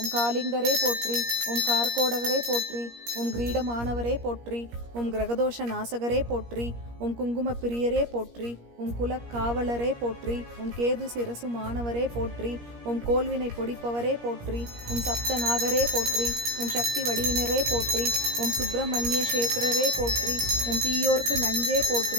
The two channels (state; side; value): late; left; 17 ms